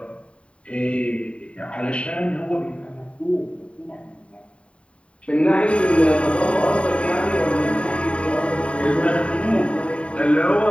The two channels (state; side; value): late; right; 0.060 ms